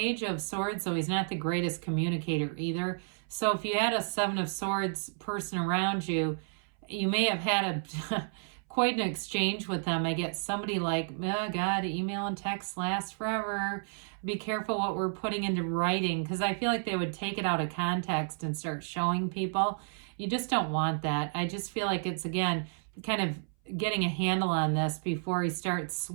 of Swords, so he's not the greatest communicator either. So if you had a 7 of Swords person around you, you may have had quite an exchange with them. I get somebody like, oh God, email and text last forever. Be careful what we're putting into writing, because I feel like they would take it out of context and start showing people. You just don't want that. I just feel like it's, again, kind of getting a handle on this before he starts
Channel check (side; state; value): left; silent; 57 dB below the other